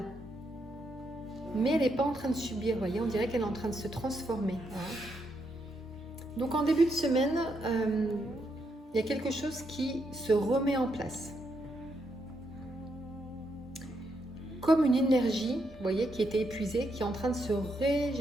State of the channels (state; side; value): normal; both; correlation 0.79